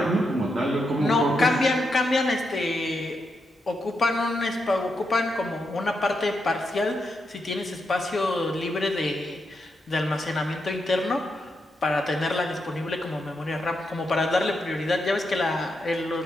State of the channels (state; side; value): normal; both; correlation 0.83